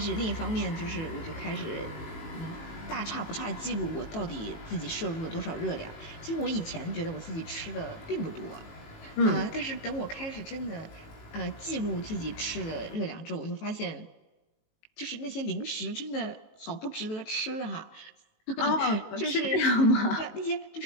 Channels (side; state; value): right; late; 19 ms